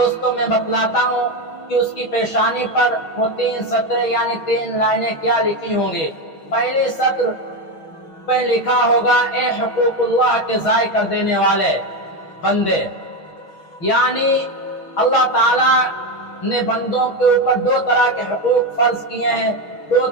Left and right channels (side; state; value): right; late; 6.3 ms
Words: میں بتلاتا ہوں کہ اس کی پیشانی پر وہ 3 سطریں یعنی 3 لائنیں کیا لکھی ہوں گی۔ پہلی سطر پہ لکھا ہوگا اے حقوق اللہ کے ضائع کر دینے والے بندے، یعنی اللہ تعالیٰ نے بندوں کے اوپر 2 طرح کے حقوق فرض کیے ہیں، 2